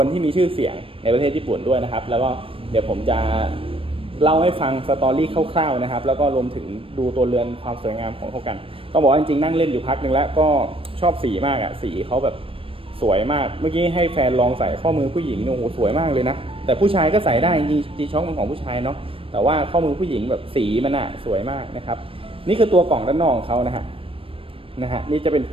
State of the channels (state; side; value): late; left; 0.26 ms